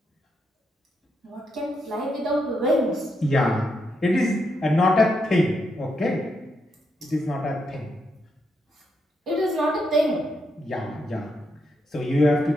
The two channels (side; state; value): both; normal; correlation 0.81